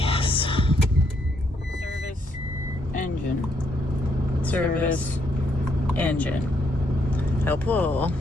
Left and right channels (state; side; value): normal; both; correlation 0.74